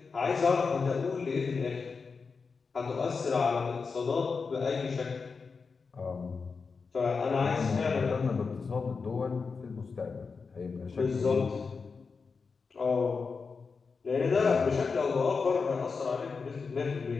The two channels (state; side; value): quieter; right; 4.9 dB